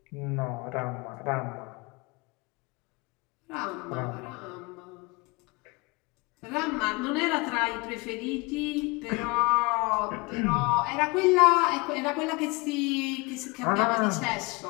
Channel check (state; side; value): quieter; right; 26.6 dB